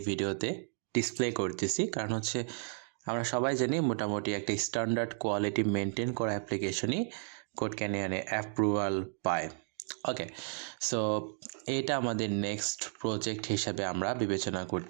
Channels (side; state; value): left; silent; 56 dB below the other